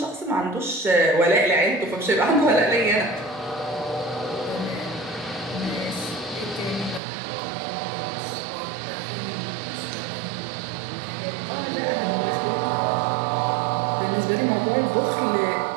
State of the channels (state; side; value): drops out; left; at 7.0 s